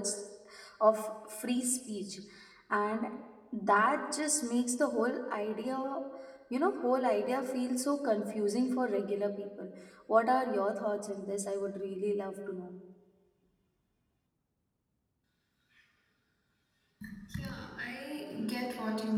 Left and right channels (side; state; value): both; identical; correlation 1.00